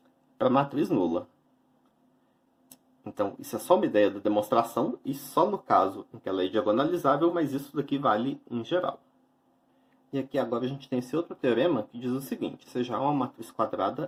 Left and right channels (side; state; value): both; identical; correlation 1.00